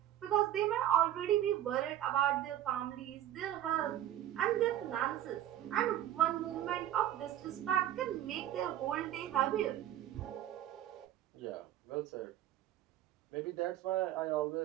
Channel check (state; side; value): quieter; left; 12.2 dB